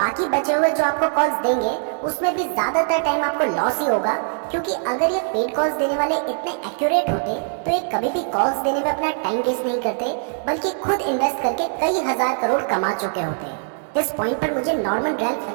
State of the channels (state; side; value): silent; left; 63 dB below the other